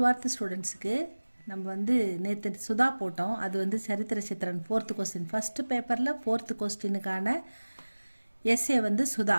ஸ்டூடெண்ட்ஸுக்கு நம்ம நேற்று சுதா போட்டோம். அது சரித்திர சித்திரன் 4th கொஸ்டின், ஃபஸ்ட்டு பேப்பரில் 4th கொஸ்டினுக்கான எஸ்ஏ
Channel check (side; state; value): both; inverted; correlation -1.00